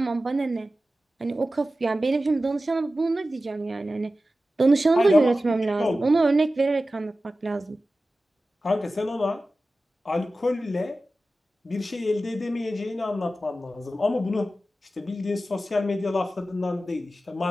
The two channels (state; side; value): normal; both; correlation 0.94